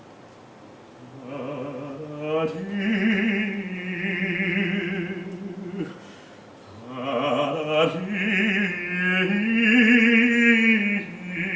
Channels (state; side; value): identical; both; correlation 1.00